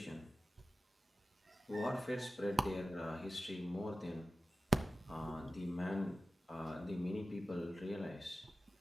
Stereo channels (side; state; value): both; normal; correlation 0.95